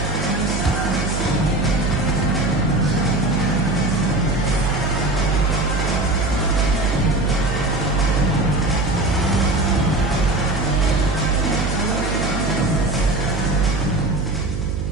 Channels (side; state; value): right; noise; hum, 3 dB below the sound